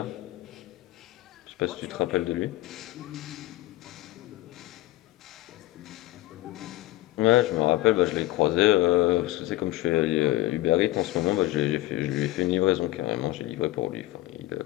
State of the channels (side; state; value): right; quieter; 16.8 dB